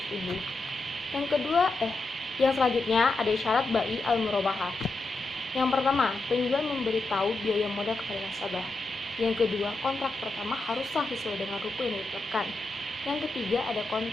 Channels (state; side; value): quieter; right; 3.2 dB